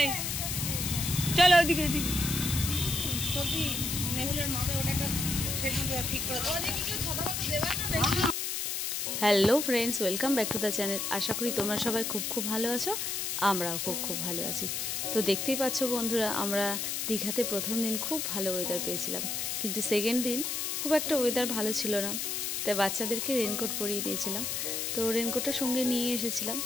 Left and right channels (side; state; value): left; noise; hiss, 1 dB below the sound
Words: চলো ওদিকে ওদিকে। Hello friends, welcome back to the channel. আশা করি তোমরা সবাই খুব ভালো আছো, আমরাও খুব ভালো আছি। তো দেখতেই পাচ্ছ বন্ধুরা, আমরা দীঘাতে প্রথম দিন খুব ভালো ওয়েদার পেয়েছিলাম, কিন্তু সেকেন্ড দিন খুব একটা ওয়েদার ভালো ছিল না। তাই বাচ্চাদেরকে রেনকোট পরিয়ে দিয়েছিলাম, তো রেনকোটটা সঙ্গে নিয়ে এসেছিলাম।